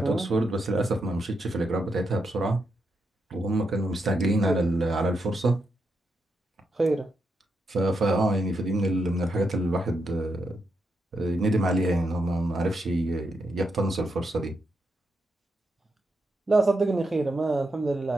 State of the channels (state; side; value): normal; both; correlation 0.83